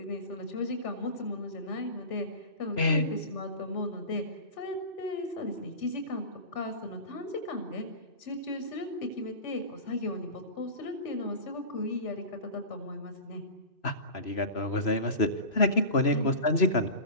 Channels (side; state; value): right; late; 3.0 ms